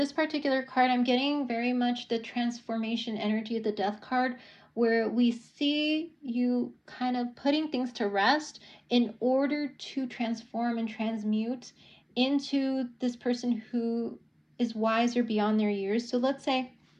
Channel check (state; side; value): identical; both; correlation 1.00